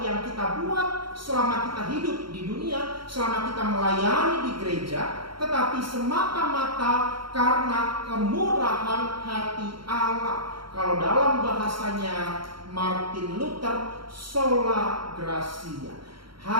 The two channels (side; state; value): left; late; 0.73 ms